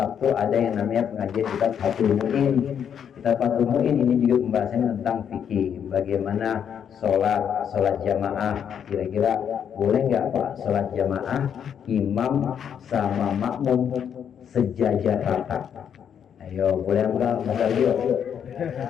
ada yang namanya pengajian kitab Fathul Mu'in. Kitab Fathul Mu'in ini juga pembahasannya tentang fikih. Bagaimana sholat jamaah, kira-kira boleh nggak Pak sholat jamaah imam sama makmum sejajar rata? Ayo, boleh nggak Mas Arjo?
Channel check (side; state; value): right; quieter; 8.3 dB